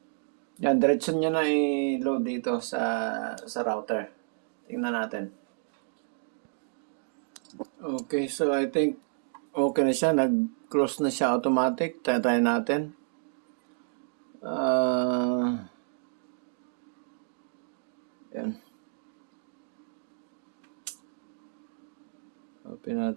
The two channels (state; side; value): silent; left; 58 dB below the other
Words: Yan, diretso niya na i-load dito sa router. Tingnan natin. Okay, so I think okay na siya. Nag-close na siya automatic. Try natin. Yan. Open